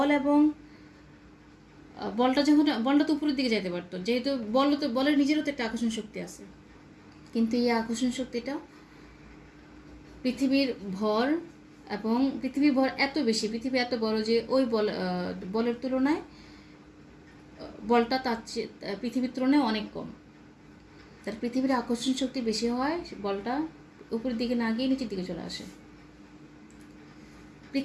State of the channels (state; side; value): identical; both; correlation 1.00